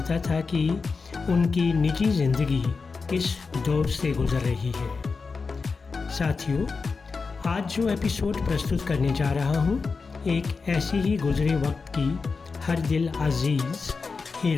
था कि उनकी निजी ज़िंदगी किस दौर से गुजर रही है। साथियों, आज जो एपिसोड प्रस्तुत करने जा रहा हूँ, एक ऐसी ही गुजरे वक्त की हर दिल अजीज़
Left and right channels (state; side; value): quieter; right; 4.6 dB